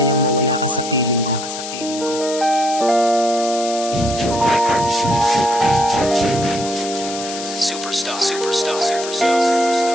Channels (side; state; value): left; noise; hiss, 9 dB below the sound